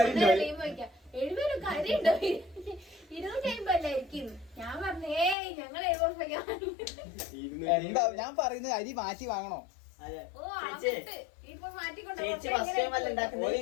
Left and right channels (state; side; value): drops out; right; at 5.4 s